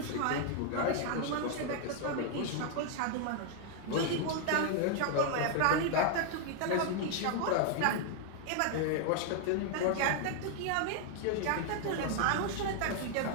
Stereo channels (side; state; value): both; different; correlation 0.00